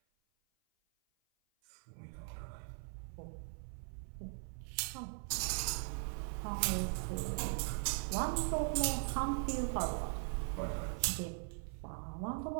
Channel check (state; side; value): silent; left; 51 dB below the other